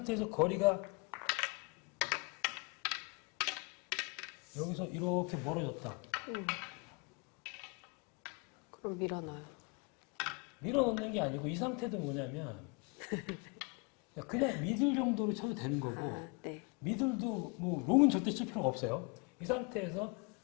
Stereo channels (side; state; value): right; quieter; 31.2 dB